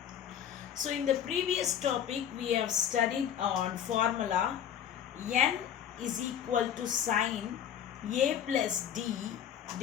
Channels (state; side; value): quieter; right; 9.3 dB